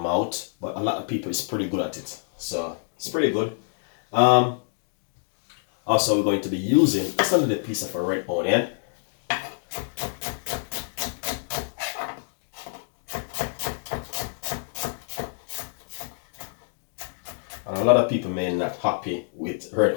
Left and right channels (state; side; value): silent; right; digital silence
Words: But a lot of people is pretty good at it. So it's pretty good. Also, we're going to be using just a little piece of a red onion. And a lot of people may not happy with red